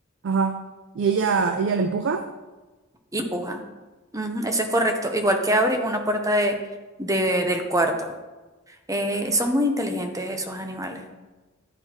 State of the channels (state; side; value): normal; both; correlation 0.25